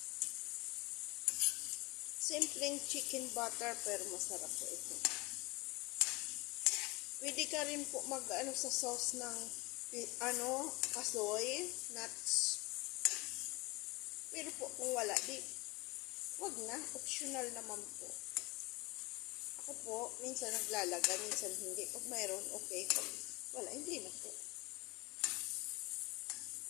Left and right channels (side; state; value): right; quieter; 25.3 dB